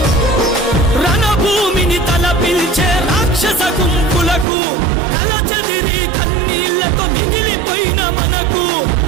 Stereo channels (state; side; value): drops out; left; at 4.5 s